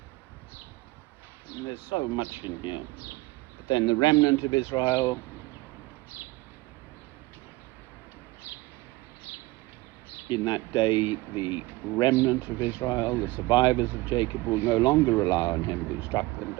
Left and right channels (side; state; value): left; quieter; 20.8 dB